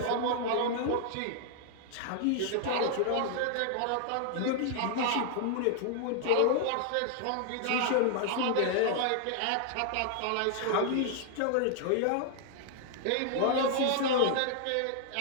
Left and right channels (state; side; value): different; both; correlation 0.00